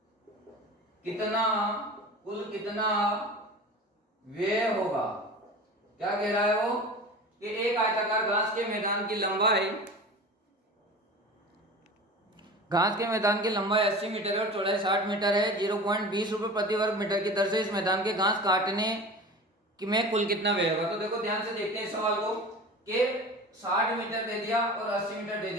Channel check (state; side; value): normal; both; correlation 0.35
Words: कितना व्यय होगा? क्या कह रहा है वो कि एक आयताकार घास के मैदान की लंबाई, घास के मैदान की लंबाई 80 मीटर है और चौड़ाई 60 मीटर है। 0.20 रुपए प्रति वर्ग मीटर की दर से इस मैदान के घास काटने में कुल कितना व्यय होगा? तो देखो ध्यान से देखते हैं इस सवाल को कि 60 मीटर दे दिया और 80 मीटर दे